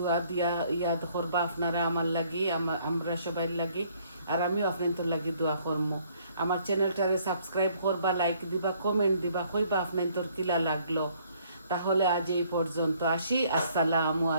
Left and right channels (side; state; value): both; inverted; correlation -0.64